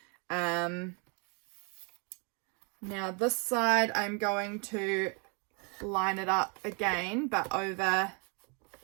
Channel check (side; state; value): left; quieter; 34.9 dB